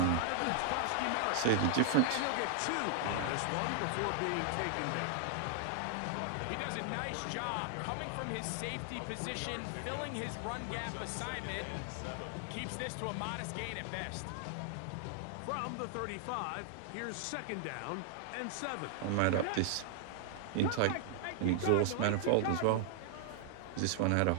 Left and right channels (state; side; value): different; both; correlation 0.00